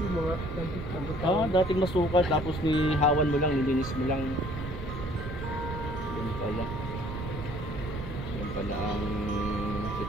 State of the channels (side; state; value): right; noise; rumble, 8 dB below the sound